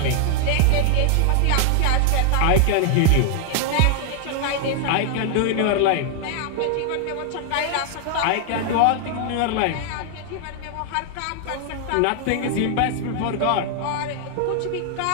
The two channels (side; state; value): both; different; correlation 0.00